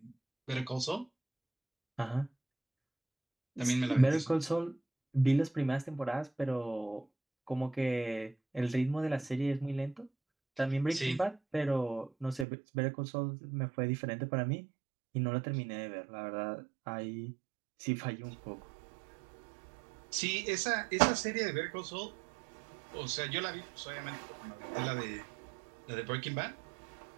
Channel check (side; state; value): left; drops out; at 12.5 s